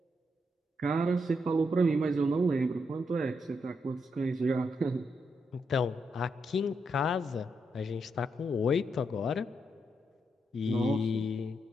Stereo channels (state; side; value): normal; both; correlation 0.81